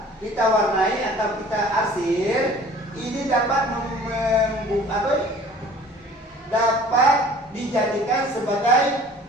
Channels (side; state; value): both; normal; correlation 0.49